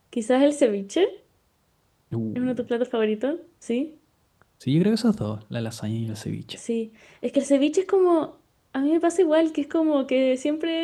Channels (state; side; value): identical; both; correlation 1.00